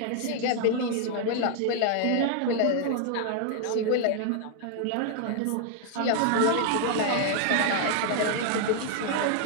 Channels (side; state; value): both; different; correlation 0.00